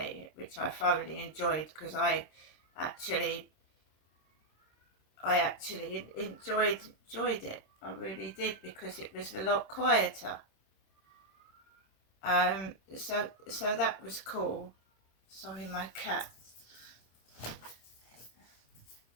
which I thoroughly enjoyed, because I actually enjoyed it. I really did, because it was a lot quieter. So that was cool. Sorry, my cat.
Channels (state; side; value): late; right; 26 ms